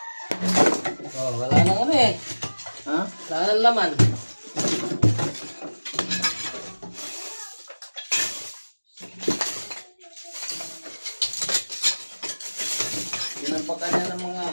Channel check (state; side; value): inverted; both; correlation -1.00